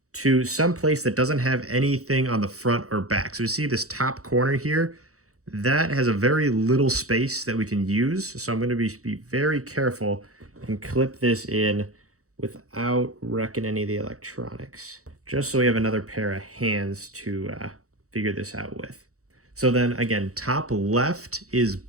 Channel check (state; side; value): late; left; 0.65 ms